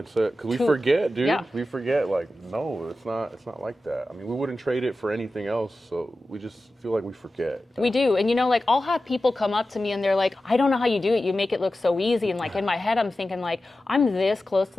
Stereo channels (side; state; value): both; normal; correlation 0.93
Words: Because we forget, dude. Yeah. We forget, like, no, it's not like that. I mean, we wouldn't trade it for anything else. So we just feel like we forget. We do. And, you know, like, I'll have people come up to me and they're like, I don't know how you do it. You make it look so easy. And, like, in my head, I'm thinking, like, I'm this close to,